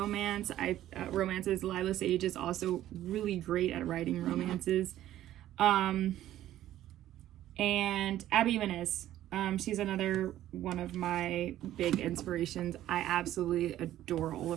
Lila Sage is also really great at writing romances. And Abby Jimenez. She's another one of my big inspirations. I absolutely adore all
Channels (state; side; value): quieter; left; 13.1 dB